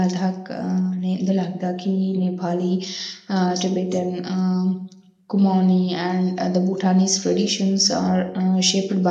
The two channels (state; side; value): identical; both; correlation 1.00